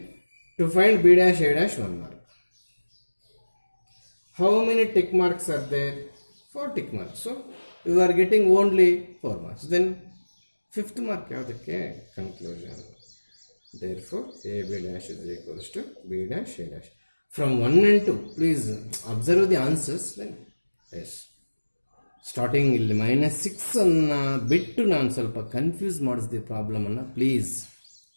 to find B dash A dash 1 mark. How many tick marks are there? 4 tick marks. So you are getting only 4 marks. Then 5th mark ಯಾವುದಕ್ಕೆ? Conclusion. Therefore AB dash is equals to B dash A dash. From 1 and 2, please observe the answers. Then yes. Starting ಇಲ್ಲಿ -6 ಅನ್ನು ಬಿಟ್ಟು ನಾನು ಸ್ವಲ್ಪ confuse ಮಾಡಿಸ್ದೆ ಪ್ರಾಬ್ಲಮನ್ನು. Please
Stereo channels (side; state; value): both; inverted; correlation -1.00